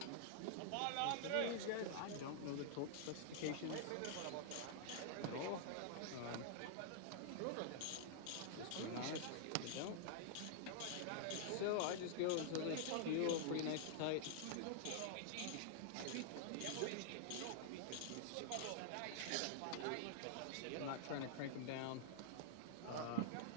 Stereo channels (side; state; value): both; different; correlation -0.01